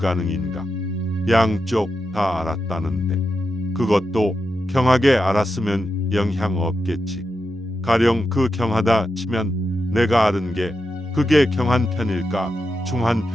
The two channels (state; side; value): normal; both; correlation 0.88